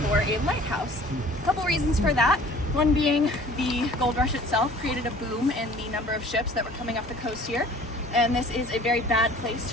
For a lighthouse. A couple reasons for that. One being the gold rush itself created a boom in the number of ships that were coming up the coast here. And this is a very bad place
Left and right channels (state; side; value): normal; both; correlation 0.49